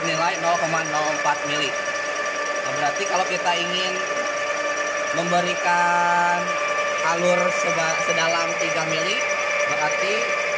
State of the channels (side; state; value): both; identical; correlation 1.00